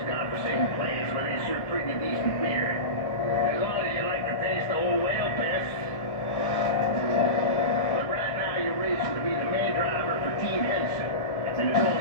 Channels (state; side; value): late; right; 1.2 ms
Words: conversation place where they serve pretty decent beer. As long as you like the taste of old whale piss. But right now you're racing to be the main driver for Team Henson, and there's